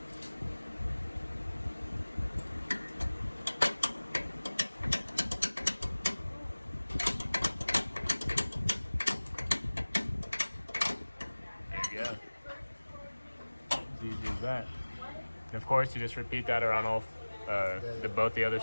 There you go. As easy as that. And of course, you just repeat that around all both the other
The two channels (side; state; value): both; inverted; correlation -1.00